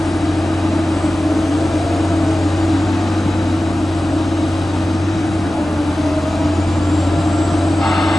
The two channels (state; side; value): normal; both; correlation 0.95